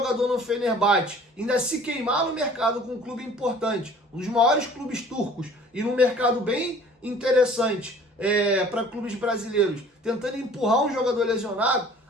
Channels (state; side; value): normal; both; correlation 0.50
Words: no Fenerbahçe, ainda se queimar no mercado com um clube importante, um dos maiores clubes turcos e num mercado bem interessante para clubes brasileiros, tentando empurrar um jogador lesionado.